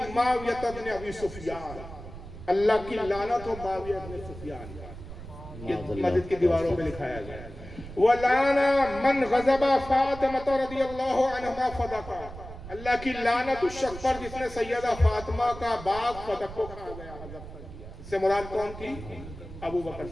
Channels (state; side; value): noise; right; rumble, 13 dB below the sound